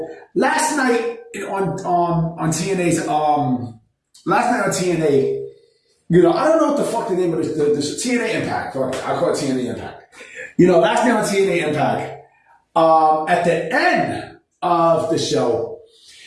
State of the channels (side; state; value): both; identical; correlation 1.00